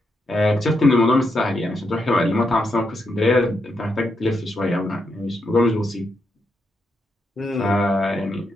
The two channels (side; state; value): both; normal; correlation 0.82